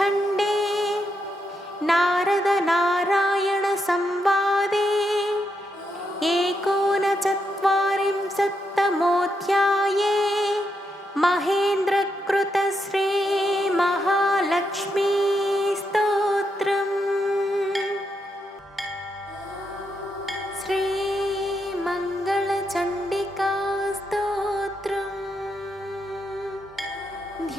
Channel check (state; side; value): normal; both; correlation 0.82